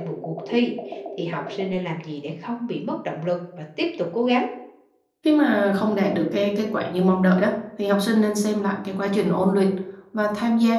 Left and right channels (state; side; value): identical; both; correlation 1.00